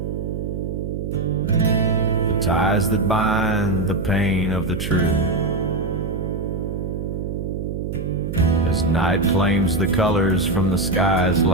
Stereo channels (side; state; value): right; noise; hum, 5 dB below the sound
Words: The ties that bind the pain of the true. As night claims the colors from the sky's